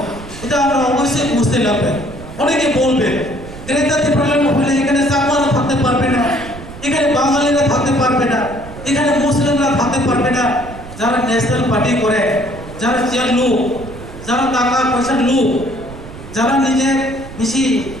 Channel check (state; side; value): noise; right; rumble, 14 dB below the sound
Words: এটা আমরা অবশ্যই বুঝতে লাগবে। অনেকে বলবে গ্রেটার ত্রিপুরাল্যান্ড হলে এখানে চাকমারা থাকতে পারবে না, এখানে বাঙালিরা থাকতে পারবে না, এখানে মুসলিমরা থাকতে পারবে না। যারা ন্যাশনাল পার্টি করে, যারা চেয়ার লোক, যারা টাকা পয়সার লোক, যারা নিজের বেশি